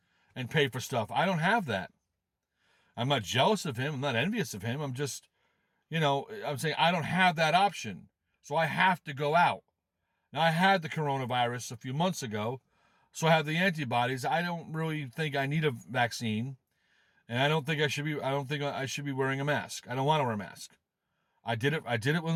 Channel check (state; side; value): identical; both; correlation 1.00